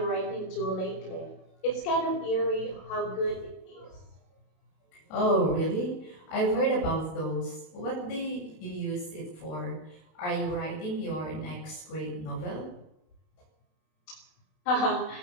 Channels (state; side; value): late; right; 32 ms